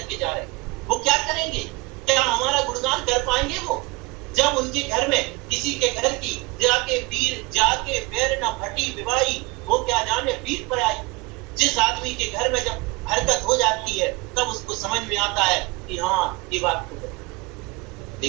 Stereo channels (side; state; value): left; quieter; 24.4 dB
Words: जा रहे हैं। वो क्या करेंगे? क्या हमारा गुणगान कर पाएंगे वो? जब उनके घर में किसी के घर की जाके पैर न फटी विवाही, वो क्या जाने वीर पर आई। जिस आदमी के घर में जब हरकत हो जाती है, तब उसको समझ में आता है कि हाँ ये बात तो है।